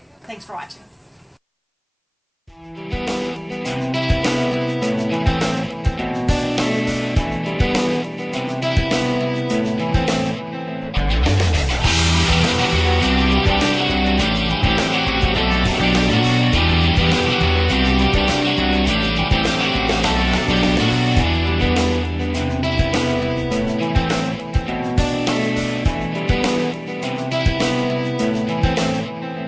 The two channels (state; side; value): identical; both; correlation 1.00